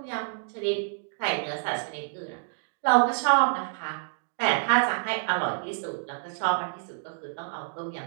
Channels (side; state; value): left; silent; digital silence